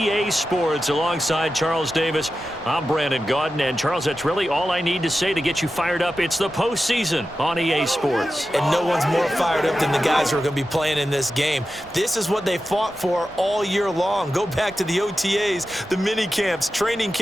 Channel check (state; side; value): normal; both; correlation 0.92